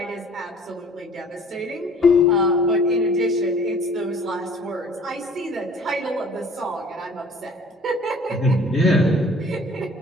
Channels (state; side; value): normal; both; correlation 0.51